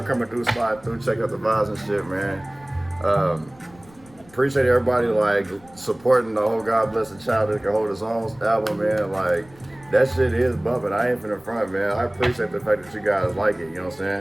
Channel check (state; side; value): noise; left; rumble, 25 dB below the sound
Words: coming through, slide through, check out the vibes and shit, man. Appreciate everybody like supporting the whole God Bless the Child That Can Hold His Own album, man. Like that shit is bumping. I ain't finna front, man. I appreciate the fact that you guys like it. You know what I'm